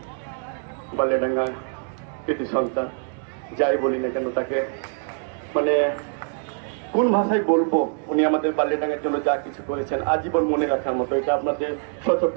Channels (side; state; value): left; silent; 58 dB below the other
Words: বালিয়াডাঙ্গা কৃতি সন্তান, যাই বলি না কেন তাকে মানে কোন ভাষায় বলবো, উনি আমাদের বালিয়াডাঙ্গার জন্য যা কিছু করেছেন আজীবন মনে রাখার মতো, এটা আপনাদের